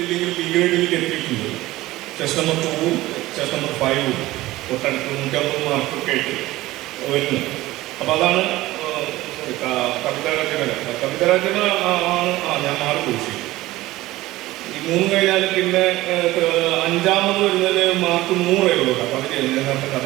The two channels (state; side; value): quieter; left; 17.6 dB